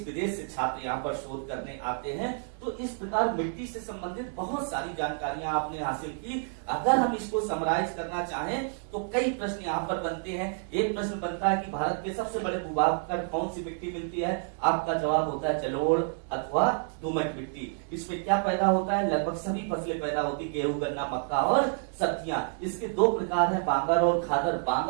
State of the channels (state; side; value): silent; left; 58 dB below the other